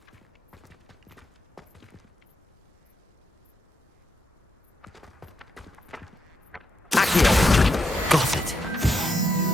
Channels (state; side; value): normal; both; correlation 0.81